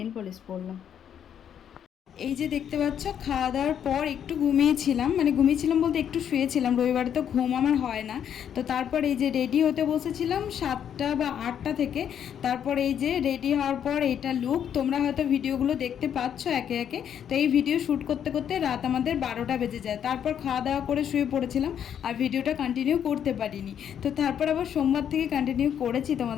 পলিশ পরলাম। এই যে দেখতে পাচ্ছ, খাওয়া দাওয়ার পর একটু ঘুমিয়েছিলাম, মানে ঘুমিয়েছিলাম বলতে একটু শুয়েছিলাম, রবিবারে তো ঘুম আমার হয় না। তো তারপর এই যে রেডি হতে বসেছিলাম 7টা বা 8টা থেকে। তারপর এই যে রেডি হওয়ার পর এইটা লুক, তোমরা হয়তো ভিডিওগুলো দেখতে পাচ্ছ একে একে। তো এই ভিডিও শ্যুট করতে করতে রাত আমাদের 12টা বেজে যায়। তারপর খাওয়া দাওয়া করে শুয়ে পড়েছিলাম, আর ভিডিওটা কন্টিনিউ করতে পারিনি। তো তারপর আবার সোমবার থেকে কন্টিনিউ করেছি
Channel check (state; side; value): quieter; right; 9.0 dB